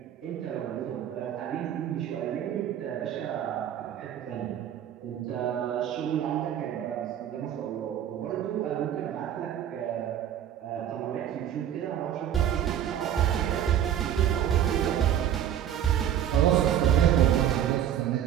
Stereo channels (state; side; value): quieter; left; 10.3 dB